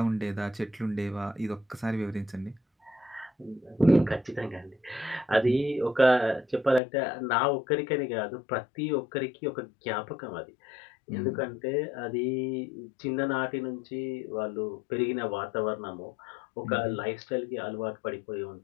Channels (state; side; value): drops out; right; at 6.8 s